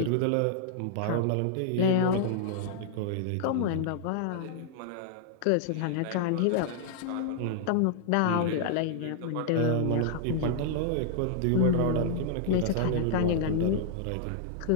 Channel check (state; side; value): different; both; correlation -0.01